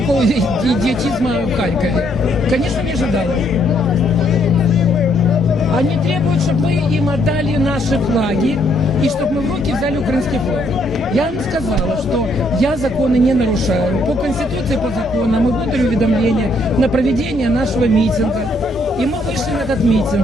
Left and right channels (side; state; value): both; normal; correlation 0.71